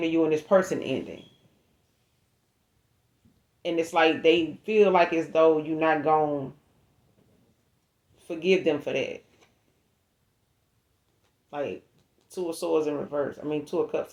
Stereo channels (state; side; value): identical; both; correlation 1.00